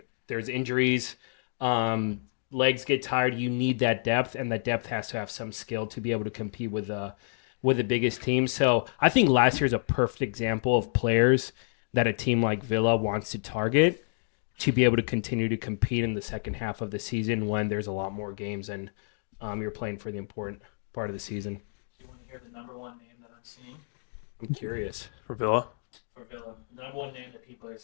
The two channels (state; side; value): silent; right; digital silence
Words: there's injuries, legs get tired. You need that depth, and that depth has to have some skill to be able to compete with the biggest team. So I think last year is a perfect example of players that a team like Villa wants to target to be able to continue to compete in the second half of the season when there's a lot more games and you're playing for the important part of the season. Do you want to hear the number one name that I'm seeing? I'm curious. For Villa? For Villa. The number one name that people are